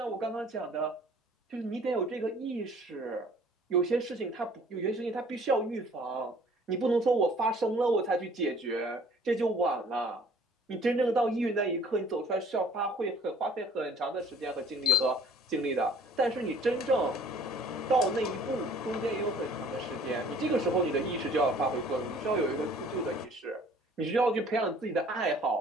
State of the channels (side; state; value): both; normal; correlation 0.54